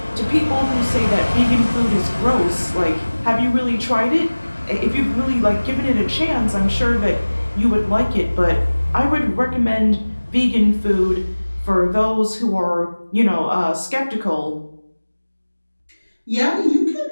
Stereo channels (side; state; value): both; inverted; correlation -1.00